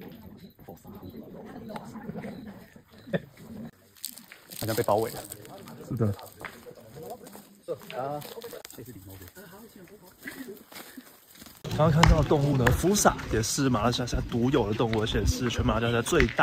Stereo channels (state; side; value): identical; both; correlation 1.00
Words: 好像被包围了。是的。刚刚看到的动物呢，福萨也是马来西亚独有的动物，而且是全马来西亚最